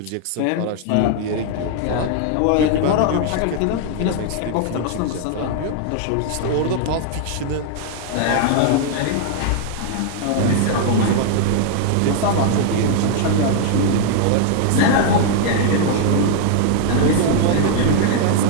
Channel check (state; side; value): different; both; correlation 0.00